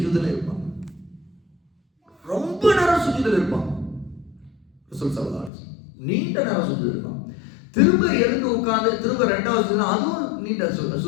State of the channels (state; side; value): drops out; right; at 5.5 s